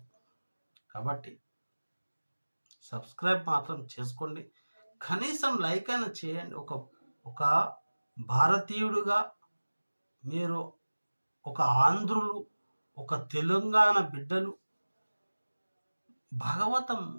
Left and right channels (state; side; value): inverted; both; correlation -1.00